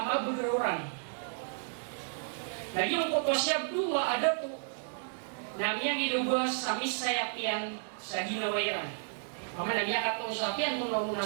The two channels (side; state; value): left; silent; digital silence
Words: mabugururan. Nagyong kuto si Abdullah ada to, namiyang ilubas sa misayapyan sa ginawayan. Mama nagyakat kong sapian kung nauna